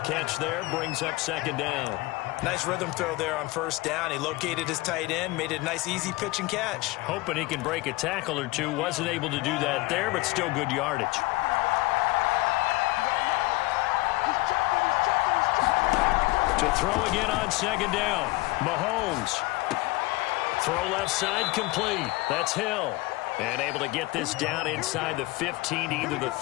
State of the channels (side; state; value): right; quieter; 21.5 dB